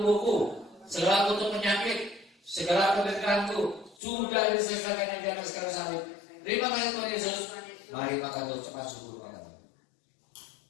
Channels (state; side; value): drops out; right; at 4.0 s